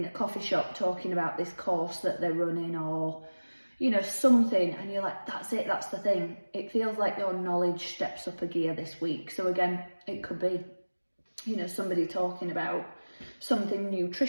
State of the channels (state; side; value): inverted; both; correlation -1.00